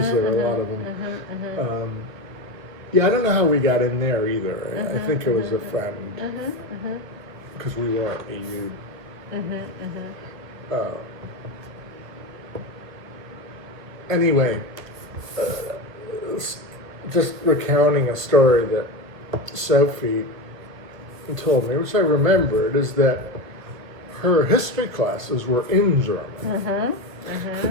there are a lot of them. Yeah, I don't know how we got in there either. I think it was a friend, because we weren't EU. Anyway, just recounting a story that Sophie told me, which I remembered, is that her history classes were in German.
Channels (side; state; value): left; late; 1.3 ms